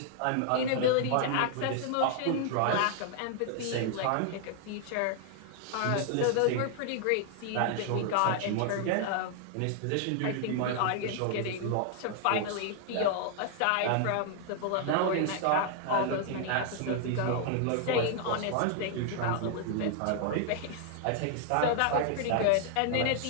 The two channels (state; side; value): different; both; correlation 0.00